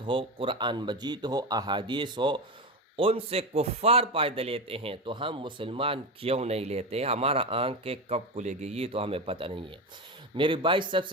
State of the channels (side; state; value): both; normal; correlation 0.19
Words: ہو، قرآن مجید ہو، احادیث ہو، ان سے کفار فائدہ لیتے ہیں تو ہم مسلمان کیوں نہیں لیتے؟ ہمارا آنکھیں کب کھلے گی یہ تو ہمیں پتہ نہیں ہے۔ میرے بھائی، سب